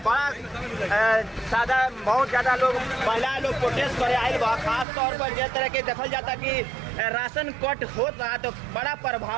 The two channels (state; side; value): drops out; left; at 4.9 s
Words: बड़ा सादा बहुत ज़्यादा लोग महिला लोग प्रोटेस्ट करे आयल बा। खास तौर पर जिस तरह के देखल जाता कि राशन कट होत रहा तो बड़ा